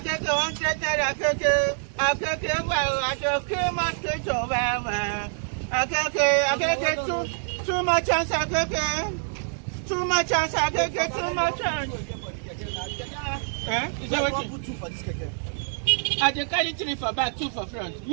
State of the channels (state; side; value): silent; left; digital silence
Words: naira, akeke, well, akeke, mosquito, well. Akeke, too much chance, akeke. Too much chance, akeke, too much chance. Is that what you put 2 for this keke? I dey carry 3 for back, 2 for front.